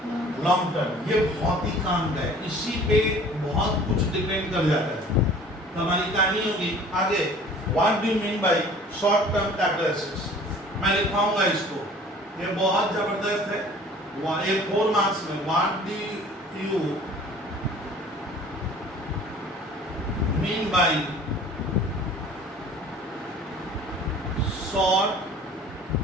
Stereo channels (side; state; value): both; normal; correlation 0.48